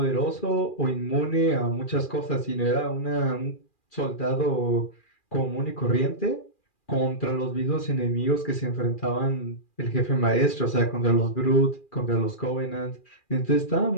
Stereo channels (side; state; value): right; late; 2.4 ms